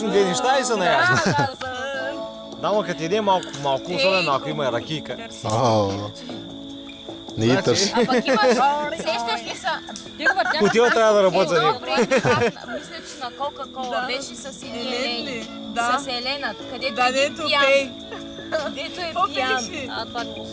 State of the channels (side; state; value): both; identical; correlation 1.00